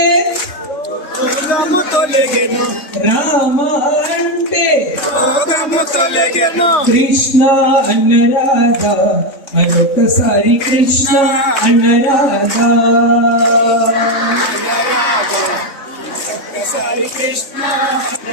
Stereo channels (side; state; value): right; late; 3.6 ms